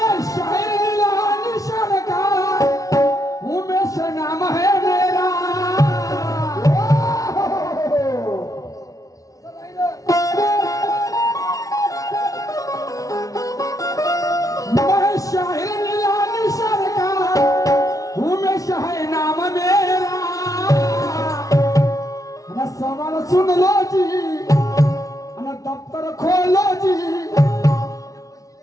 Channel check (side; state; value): right; late; 0.17 ms